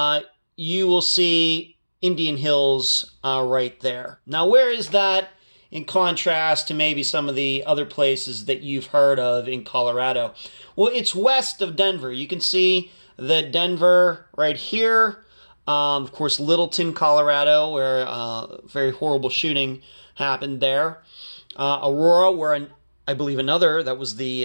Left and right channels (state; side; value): inverted; both; correlation -1.00